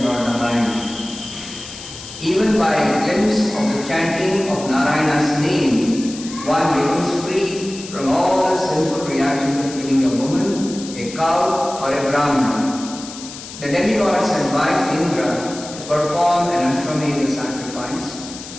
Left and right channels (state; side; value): noise; left; hiss, 13 dB below the sound